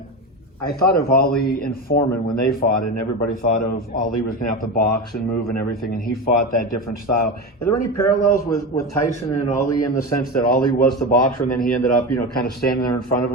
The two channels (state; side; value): normal; both; correlation 0.21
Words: I thought of Ali and Foreman when they fought, and everybody thought of Ali was going to have to box and move and everything, and he fought that different style. Are there any parallels with Tyson and Ali in the sense that Ali was the boxer and then he ended up, kind of standing there in front of